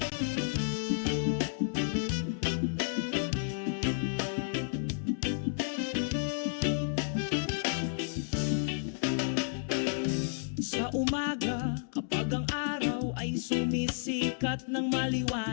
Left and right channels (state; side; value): silent; right; digital silence